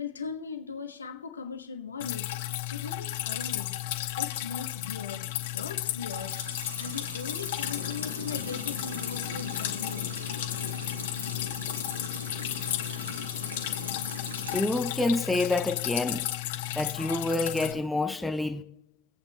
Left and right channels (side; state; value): right; quieter; 5.6 dB